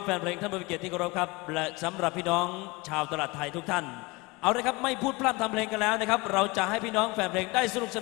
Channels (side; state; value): right; quieter; 24.1 dB